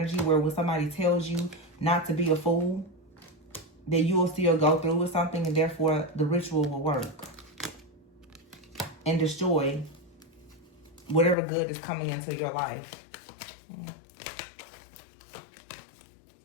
where when somebody tells you not to be a fool, that you will still go through with something, and therefore the ritual will work and destroy whatever good is coming into your life.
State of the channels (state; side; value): drops out; right; at 11.4 s